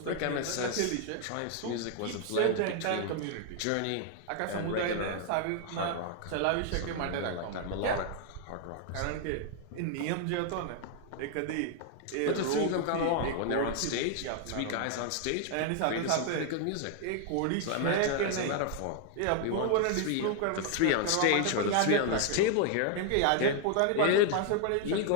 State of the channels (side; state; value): both; different; correlation 0.00